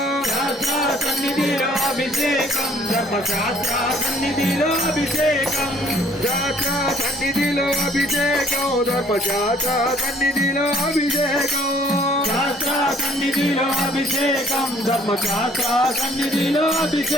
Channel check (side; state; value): both; normal; correlation 0.59